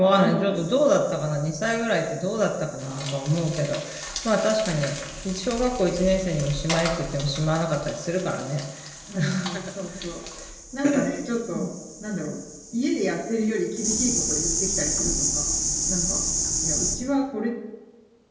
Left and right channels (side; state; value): both; identical; correlation 1.00